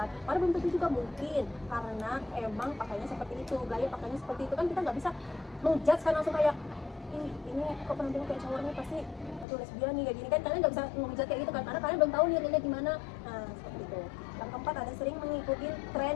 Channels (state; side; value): drops out; right; at 9.5 s